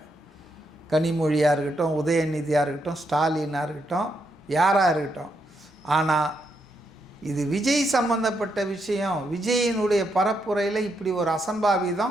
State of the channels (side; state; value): both; normal; correlation 0.80